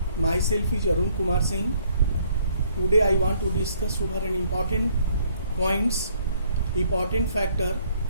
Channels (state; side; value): inverted; both; correlation -0.65